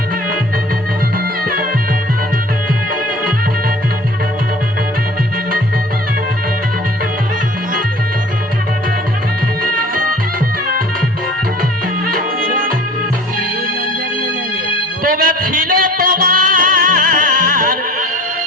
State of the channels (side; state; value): both; normal; correlation 0.45